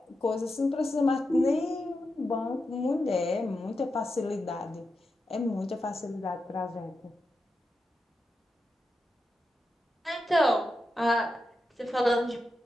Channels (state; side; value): normal; both; correlation 0.88